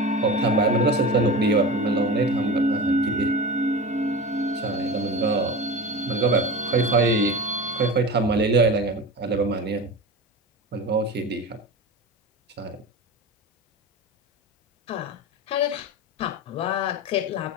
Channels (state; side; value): normal; both; correlation 0.29